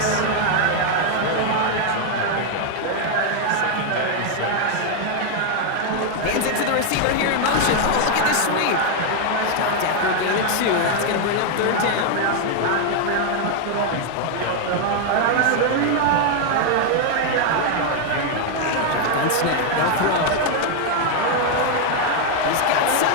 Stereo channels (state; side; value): different; both; correlation 0.00